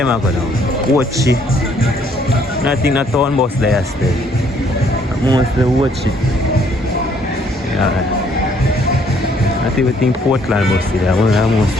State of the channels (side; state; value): both; normal; correlation 0.64